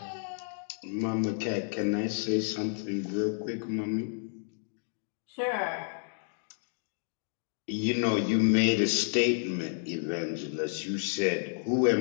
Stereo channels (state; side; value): silent; right; 57 dB below the other